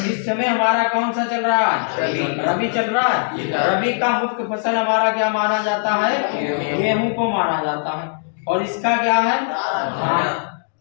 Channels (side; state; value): right; silent; digital silence